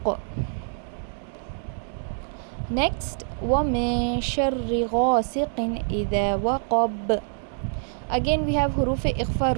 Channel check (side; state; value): left; silent; digital silence